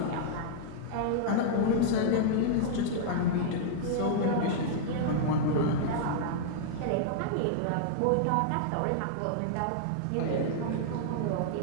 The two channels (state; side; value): different; both; correlation -0.01